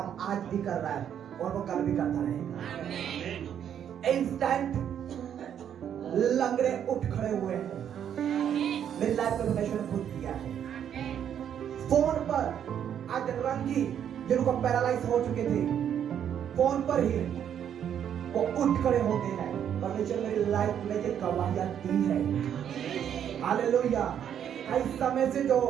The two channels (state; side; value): quieter; left; 9.2 dB